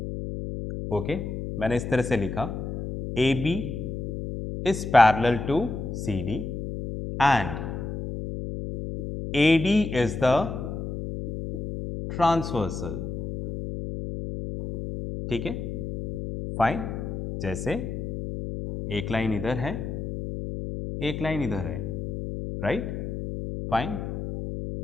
ओके। मैंने इस तरह से लिखा AB is parallel to CD and AD is the transversal, ठीक है, फाइन। जैसे एक लाइन इधर है, एक लाइन इधर है, राइट, फाइन।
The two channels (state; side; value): noise; left; hum, 5 dB below the sound